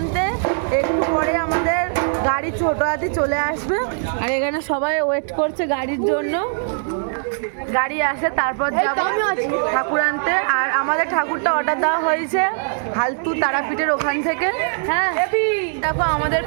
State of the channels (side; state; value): left; silent; 65 dB below the other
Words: একটু পরে আমাদের গাড়ি ছোট হাতি চলে আসবে, আর এখানে সবাই ওয়েট করছে গাড়ির জন্য। গাড়ি আসে তারপর যাবো ঠাকুর আনতে। আর আমাদের ঠাকুরটা অর্ডার দেওয়া হয়েছে হালতু তারাপীঠের ওখান থেকে। হ্যাঁ দেখো আমাদের